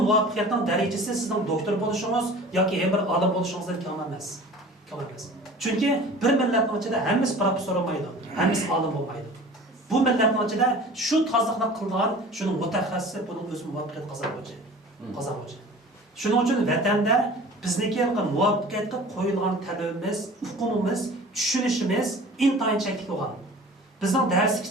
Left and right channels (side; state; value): both; normal; correlation 0.42